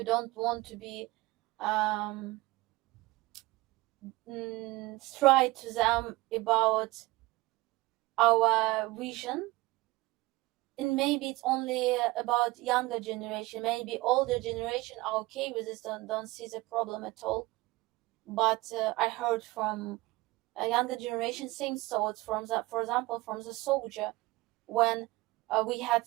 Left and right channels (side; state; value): left; quieter; 20.5 dB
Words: don't want to be um, straight to them about our vision, and maybe it's only about younger generation. Maybe older generation are okay with this, don't see the problem at all. But I heard from a younger generation same thoughts from the, for example, from the soldier, when we had,